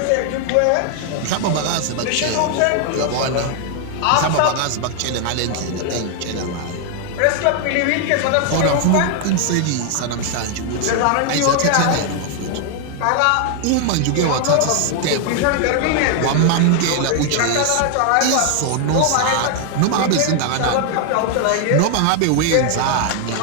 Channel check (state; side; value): different; both; correlation 0.00